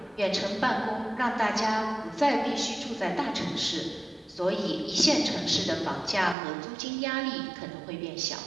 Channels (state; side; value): drops out; left; at 6.4 s